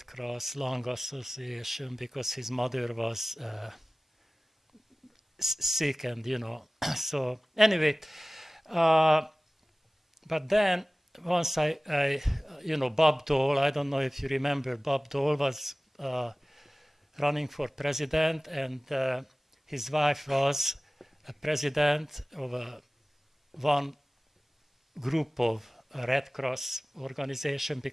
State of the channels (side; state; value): both; normal; correlation 0.98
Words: Cross, Lung Association, because his mother was sick and, you know, so anyway, but then once I you know, Bob Dole, I don't know if you remember, Bob Dole was running for president, and his wife was a president of one group of Red Cross organization,